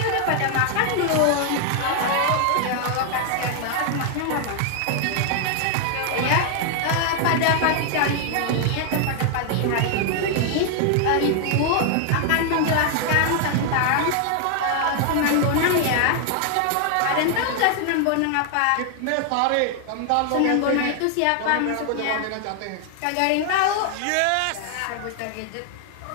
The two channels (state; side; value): different; both; correlation 0.00